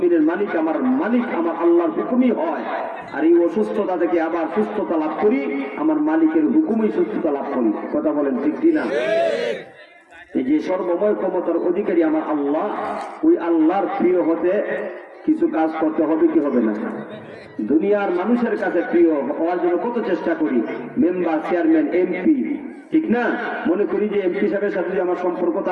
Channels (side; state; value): both; identical; correlation 1.00